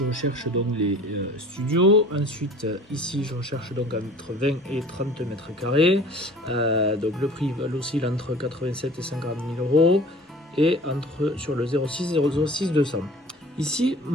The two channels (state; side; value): normal; both; correlation 0.46